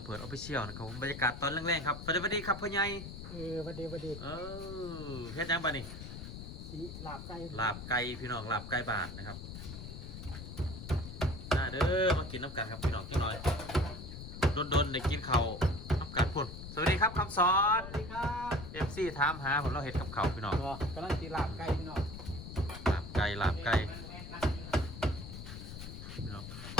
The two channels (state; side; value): noise; left; rumble, 10 dB below the sound